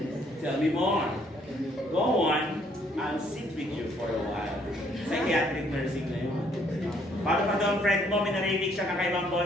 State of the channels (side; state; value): both; normal; correlation 0.66